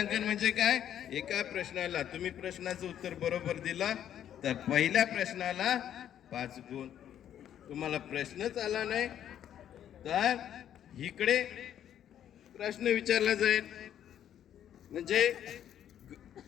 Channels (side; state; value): right; quieter; 10.3 dB